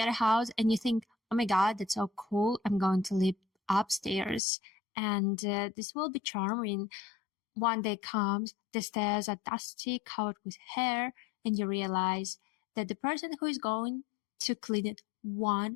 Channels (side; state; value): right; drops out; at 4.4 s